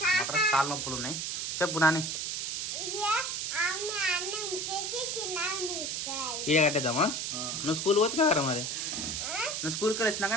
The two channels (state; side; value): noise; right; hiss, 2 dB below the sound